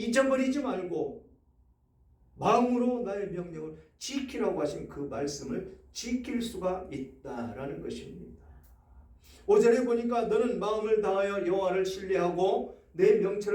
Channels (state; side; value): identical; both; correlation 1.00